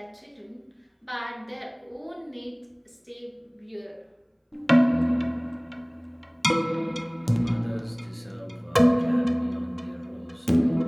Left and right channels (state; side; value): identical; both; correlation 1.00